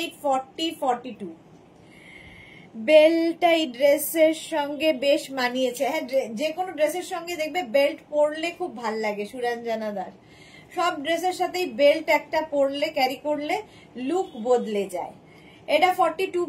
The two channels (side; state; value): both; identical; correlation 1.00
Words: 40, 42 বেল্টটা এই ড্রেসের সঙ্গে বেশ মানিয়েছে। হ্যাঁ, যে কোনো ড্রেসের সঙ্গে দেখবে বেল্ট পরলে খুব ভাল লাগে। সুরঞ্জনা দাস, সব ড্রেসের সাথেই বেল্ট একটা পরলে, ক্যারি করলে লুক বদলে যায়। এটা 42